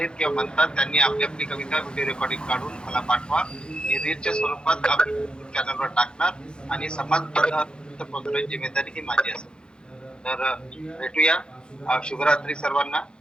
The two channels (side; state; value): right; late; 0.049 ms